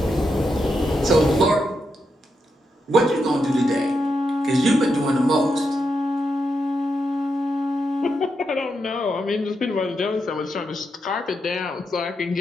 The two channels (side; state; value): both; normal; correlation 0.84